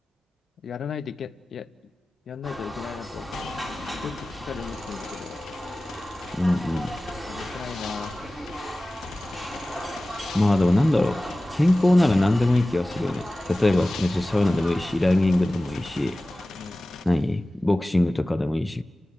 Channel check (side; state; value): both; normal; correlation 0.97